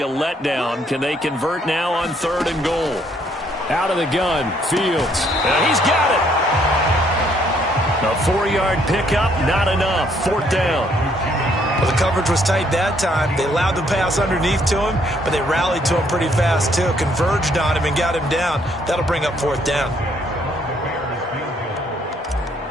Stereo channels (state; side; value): normal; both; correlation 0.68